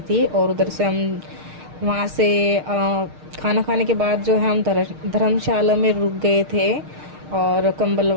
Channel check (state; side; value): late; left; 6.5 ms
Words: थी। और उधर से हम वहाँ से खाना खाने के बाद जो है हम धर्मशाला में रुक गए थे और कंबल